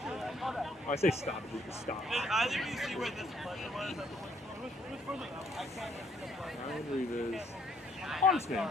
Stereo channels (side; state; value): both; normal; correlation 0.67